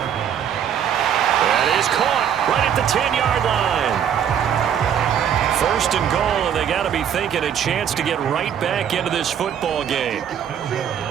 That is caught right at the 10-yard line. First and goal, and they got to be thinking a chance to get right back into this football game.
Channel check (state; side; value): quieter; left; 8.8 dB